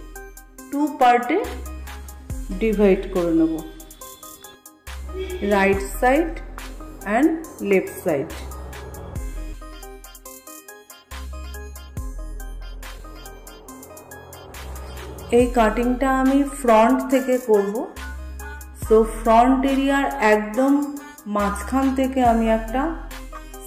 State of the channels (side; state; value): both; identical; correlation 1.00